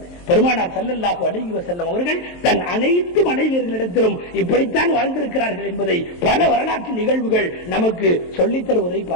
பெருமானார் ஸல்லல்லாஹு அலைஹி வஸல்லம் அவர்கள் தன் அனைத்து மனைவியர்களிடத்திலும் இப்படித்தான் வாழ்ந்திருக்கிறார்கள் என்பதை பல வரலாற்று நிகழ்வுகள் நமக்கு சொல்லித் தருவதை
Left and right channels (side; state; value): right; late; 23 ms